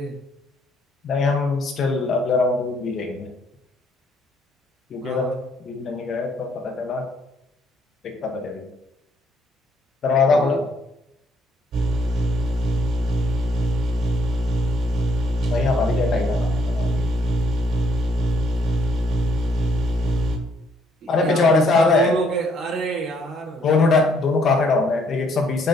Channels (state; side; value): normal; both; correlation 0.68